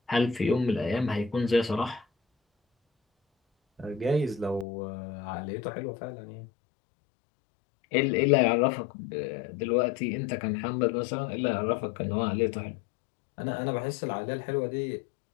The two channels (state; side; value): drops out; right; at 4.7 s